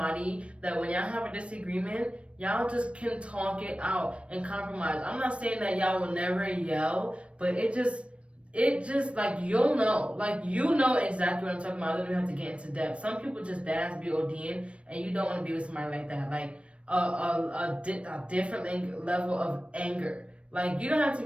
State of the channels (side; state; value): left; late; 0.061 ms